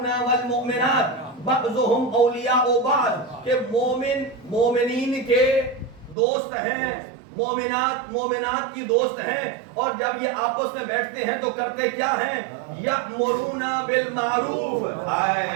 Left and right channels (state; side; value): drops out; left; at 6.2 s